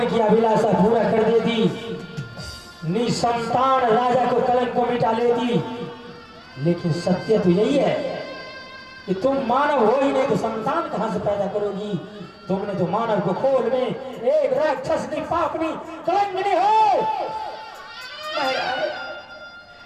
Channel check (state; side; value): identical; both; correlation 1.00